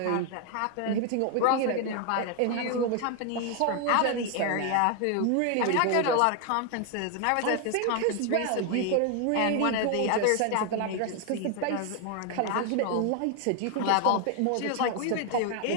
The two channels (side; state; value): both; different; correlation 0.00